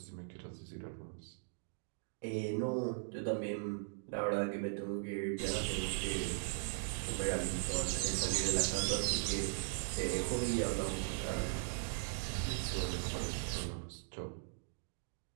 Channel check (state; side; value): silent; left; digital silence